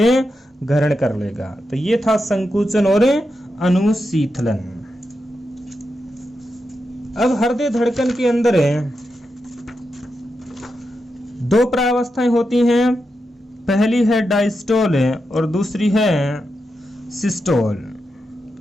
ग्रहण कर लेगा। तो ये था संकुचन और अनुशीतलन। अब हृदय धड़कन के अंदर दो प्रावस्थाएं होती हैं। पहली है डायस्टोल और दूसरी है सिस्टोल,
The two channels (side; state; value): both; normal; correlation 0.87